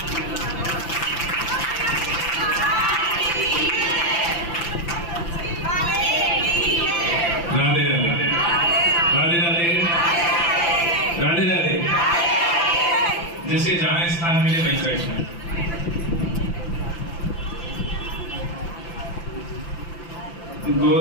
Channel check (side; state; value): right; late; 5.9 ms